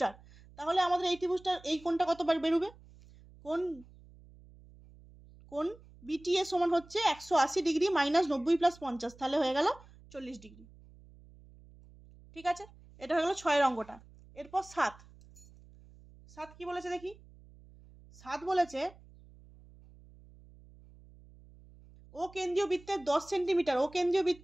তাহলে আমাদের এই ত্রিভুজটার এই কোণটা কত বেরোবে, কোণ বিটিএ সমান হচ্ছে 180 ডিগ্রি মাইনাস 90 প্লাস 50, তাহলে হয়ে গেল 40 ডিগ্রি। ঠিক আছে, এটা হয়ে গেল 6 অঙ্কটা। এরপর 7 কি বলেছে দেখি। 7 বলেছে ও কেন্দ্রীয় বৃত্তের 10 সেন্টিমিটার, ও কেন্দ্রীয়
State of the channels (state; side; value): noise; right; hum, 23 dB below the sound